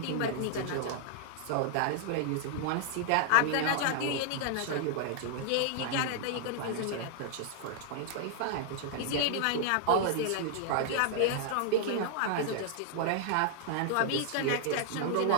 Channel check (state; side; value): different; both; correlation -0.01